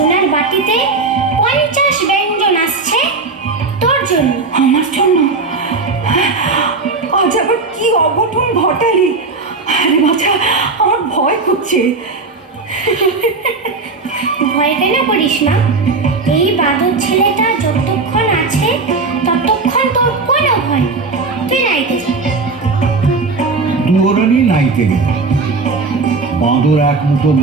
বাটিতে 50 ব্যঞ্জন আসছে তোর জন্য। আমার জন্য? আজ আবার কি অঘটন ঘটালি? আরে বাছা, আমার ভয় করছে। ভয় কেন করিস না? এই বাদর ছেলেটা যতক্ষণ আছে ততক্ষণ তোর কোনো ভয় নেই। তুই নাইতে যা। দুয়োরানী নাইতে গেল। বাঁদর 1 মুঠো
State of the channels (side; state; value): left; quieter; 4.0 dB